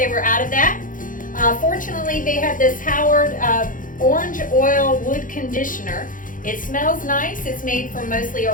were out of that. Fortunately, they had this Howard orange oil wood conditioner. It smells nice. It's made from mostly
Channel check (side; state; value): right; late; 0.39 ms